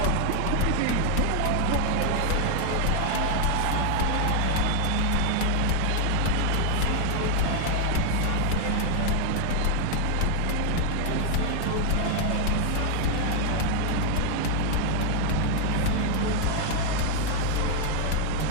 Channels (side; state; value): both; different; correlation 0.00